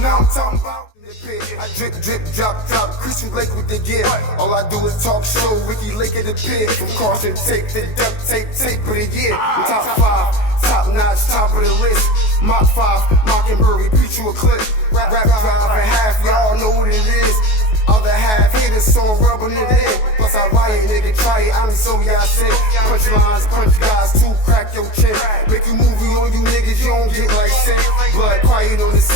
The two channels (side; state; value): right; late; 19 ms